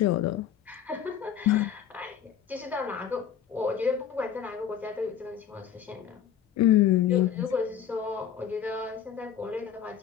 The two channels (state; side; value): quieter; right; 9.0 dB